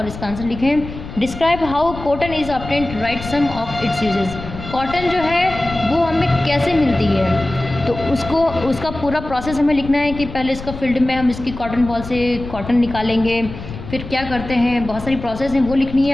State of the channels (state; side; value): noise; left; rumble, 11 dB below the sound